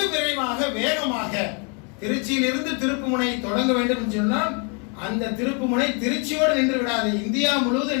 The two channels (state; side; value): quieter; right; 36.2 dB